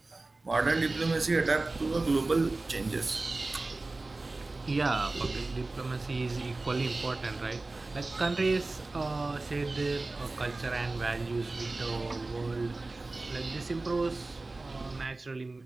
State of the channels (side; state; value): left; quieter; 3.2 dB